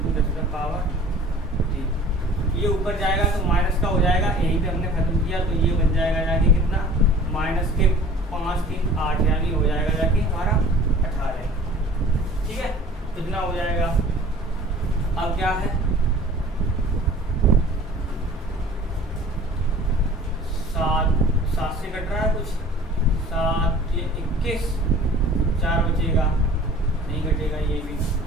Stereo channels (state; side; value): normal; both; correlation 0.47